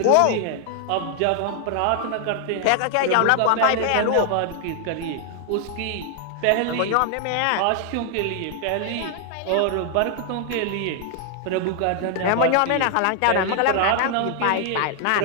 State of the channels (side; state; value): both; different; correlation 0.00